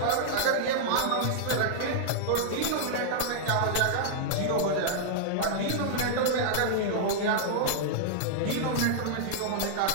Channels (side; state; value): both; different; correlation -0.01